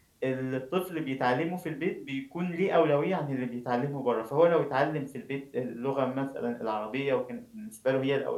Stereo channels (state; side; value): identical; both; correlation 1.00